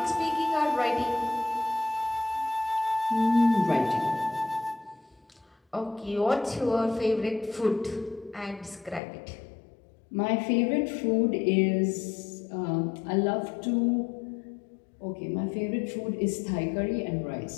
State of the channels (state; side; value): drops out; right; at 9.0 s